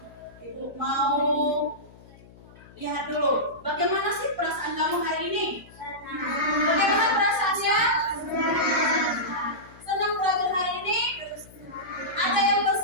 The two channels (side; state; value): left; noise; hum, 22 dB below the sound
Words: ibu mau lihat dulu. Bagaimana sih perasaan kamu hari ini? Bagaimana perasaannya? Senang belajar hari ini? Ada yang